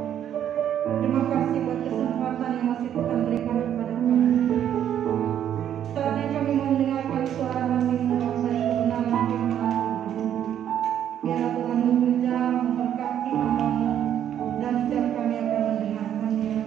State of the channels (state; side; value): quieter; left; 10.1 dB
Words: Terima kasih buat kesempatan yang masih Tuhan berikan kepada kami. Saatnya kami mendengarkan suara hati-Mu dari kebenaran firman Tuhan. Biar Tuhan bekerja memberkati hamba-Mu dan setiap kami akan mendengarkannya,